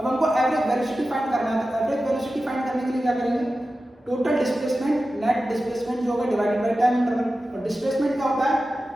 हमको एवरेज वेलोसिटी फाइंड करना है, तो एवरेज वेलोसिटी फाइंड करने के लिए क्या करेंगे, टोटल डिस्प्लेसमेंट नेट डिस्प्लेसमेंट जो होगा डिवाइडेड बाय टाइम इंटरवल। और डिस्प्लेसमेंट क्या होता है,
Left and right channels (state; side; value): normal; both; correlation 0.93